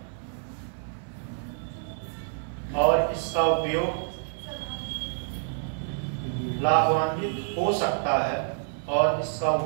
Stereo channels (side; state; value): left; silent; 59 dB below the other